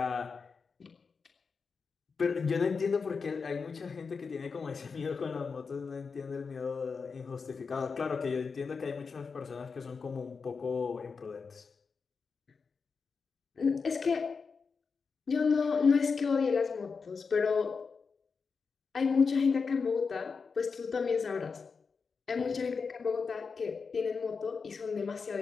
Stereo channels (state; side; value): quieter; right; 5.1 dB